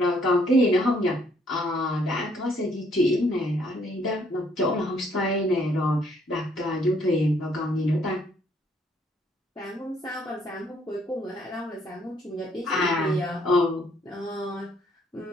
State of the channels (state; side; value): normal; both; correlation 0.67